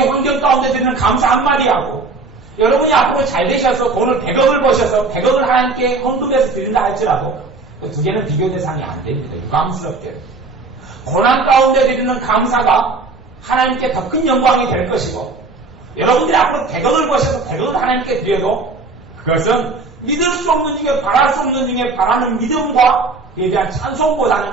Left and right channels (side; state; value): left; quieter; 3.8 dB